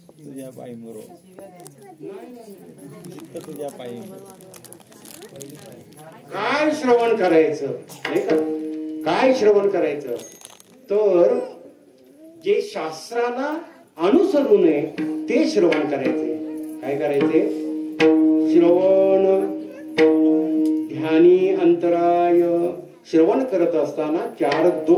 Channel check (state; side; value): identical; both; correlation 1.00